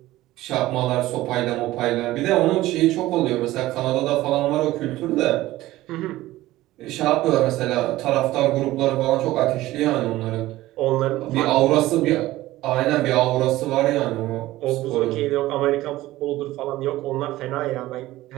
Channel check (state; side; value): quieter; left; 16.7 dB